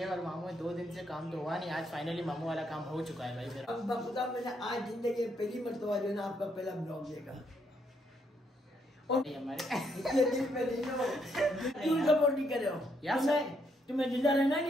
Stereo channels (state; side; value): normal; both; correlation 0.75